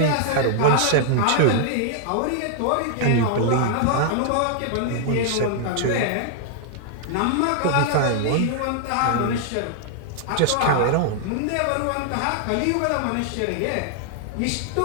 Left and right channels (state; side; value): different; both; correlation -0.01